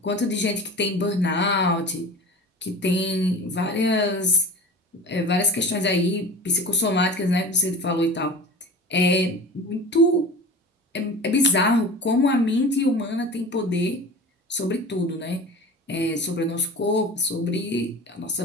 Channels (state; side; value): normal; both; correlation 0.35